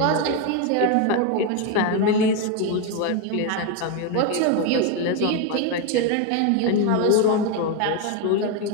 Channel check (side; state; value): both; different; correlation 0.02